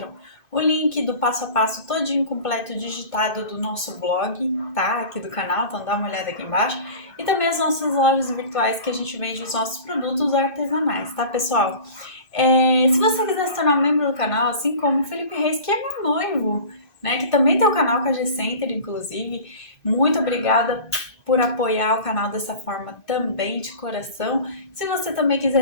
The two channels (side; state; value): right; late; 2.6 ms